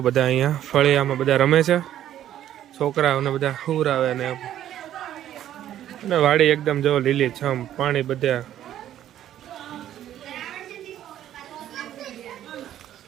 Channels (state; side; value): quieter; left; 11.7 dB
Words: બધા અહીંયા ફળિયામાં બધા રમે છે, છોકરાઓને બધા હુરાવે અને વાડી એકદમ જો લીલી છમ, પાણી બધા.